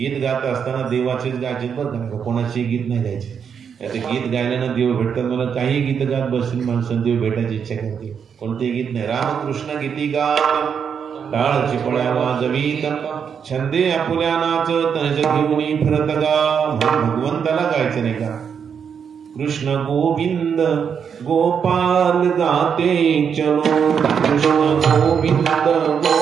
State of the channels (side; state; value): left; quieter; 7.1 dB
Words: गात असताना देवाचेच गायचे बरं का, कोणाचे गीत नाही गायचे. ते गीत गायल्यानं देव भेटतात. मला काही गीत गात बसतील माणसं देव भेटायची इच्छा करते, कोणतेही गीत नाही. रामकृष्ण गीती गात, टाळ चिपळ्या वाजवीत, छंदे आपुल्या नाचत, घेऊन फिरत गा. भगवंताला गायचं नाही का, कृष्ण गोविंद गोपाल गाते चलो, कृष्ण गोविंद